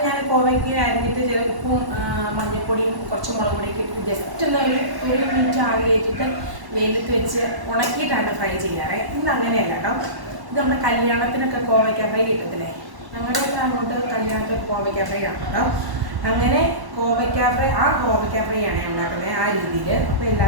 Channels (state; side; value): late; left; 1.1 ms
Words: ഞാൻ കോവയ്ക്ക് അരിഞ്ഞിട്ട് ചില ഉപ്പും മഞ്ഞൾപ്പൊടിയും കുറച്ച് മുളക് പൊടിയൊക്കെ ഇട്ട് ജസ്റ്റ് ഒന്ന് ഒരു മിനിറ്റ് ആവി കയറ്റിട്ട് വെയിലത്ത് വെച്ച് ഉണക്കിയിട്ടാണ് ഫ്രൈ ചെയ്യാറ്. ഇന്ന് അങ്ങനെയല്ല കേട്ടോ. ഇത് നമ്മുടെ കല്യാണത്തിനൊക്കെ കോവയ്ക്ക ഫ്രൈ കിട്ടത്തില്ലേ, അങ്ങനെയൊക്കെ അങ്ങോട്ട് കല്യാണത്തിൽ കോവയ്ക്ക ഫ്രൈ ആണ് കേട്ടോ. അങ്ങനെ കോവയ്ക്ക ഫ്രൈ ആണ് ഞാൻ ഉണ്ടാക്കുന്നത് ആ രീതിയിൽ. അപ്പോൾ